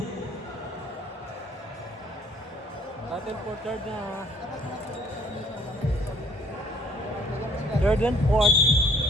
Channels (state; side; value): normal; both; correlation 0.59